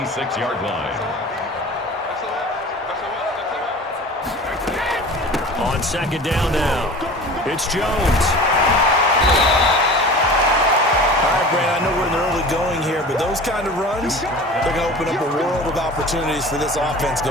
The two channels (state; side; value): normal; both; correlation 0.39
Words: line. On second down now, it's Jones. Brand, I know we're in the early going here, but those kind of runs, they're going to open up a world of opportunities for this offense